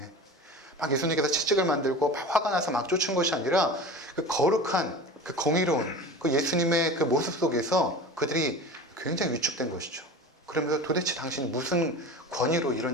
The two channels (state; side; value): normal; both; correlation 0.34